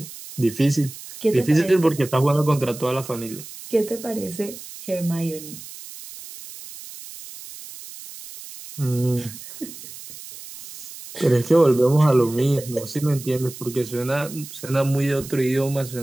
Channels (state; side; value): noise; right; hiss, 14 dB below the sound